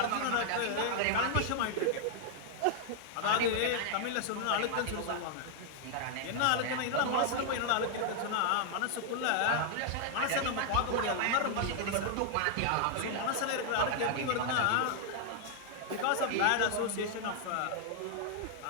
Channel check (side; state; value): both; different; correlation 0.00